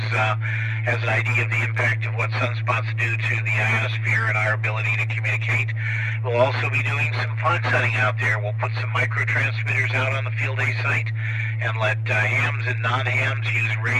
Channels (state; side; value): identical; both; correlation 1.00